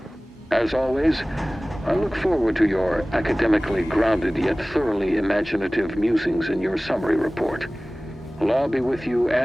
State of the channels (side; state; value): both; normal; correlation 0.98